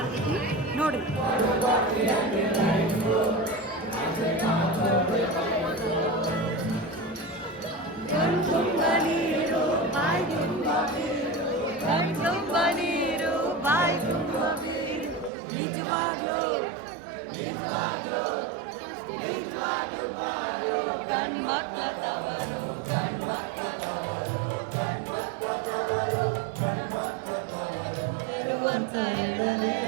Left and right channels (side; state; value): left; drops out; at 15.3 s